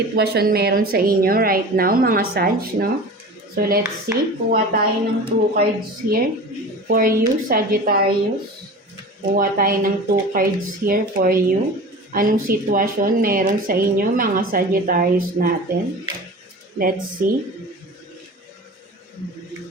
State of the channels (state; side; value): normal; both; correlation 0.35